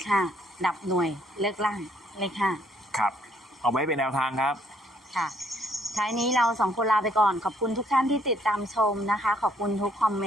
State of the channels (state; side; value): normal; both; correlation 0.67